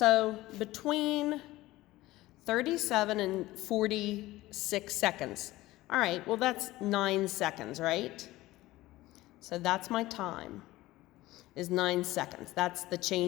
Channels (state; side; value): quieter; right; 17.5 dB